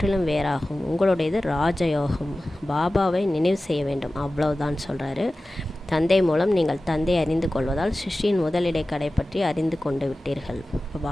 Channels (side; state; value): both; normal; correlation 0.96